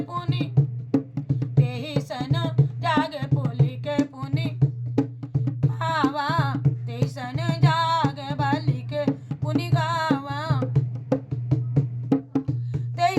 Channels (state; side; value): identical; both; correlation 1.00